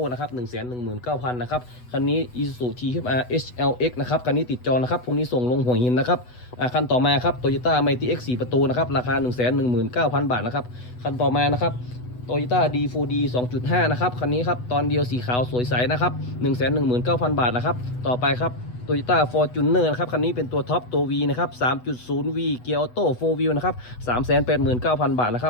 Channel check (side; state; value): right; late; 8.1 ms